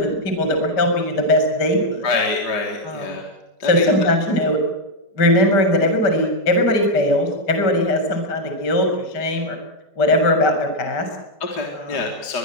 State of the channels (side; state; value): right; late; 5.1 ms